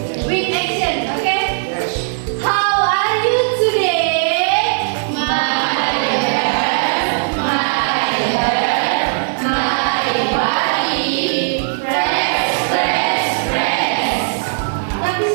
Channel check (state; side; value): silent; left; digital silence